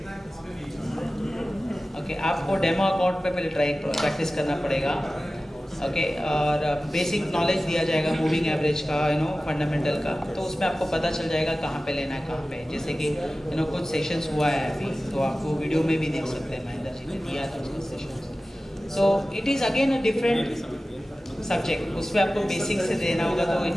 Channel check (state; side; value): normal; both; correlation 0.96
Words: ओके आपको डेमो अकाउंट पे पहले प्रैक्टिस करना पड़ेगा। ओके और बेसिक नॉलेज दिया जाएगा मूविंग एवरेज का, फंडामेंटल का, तो उसमें आपको पता चल जाएगा कहाँ पे लेना है कहाँ पे। जैसे कि कुछ सेशंस हुआ है अभी, तो आप वो वीडियो में भी देख सकते हैं, महेंद्र जी ने दिया था उसके sessions. So it is again a different subject, उसमें आपको बेसिक से देना होगा तो it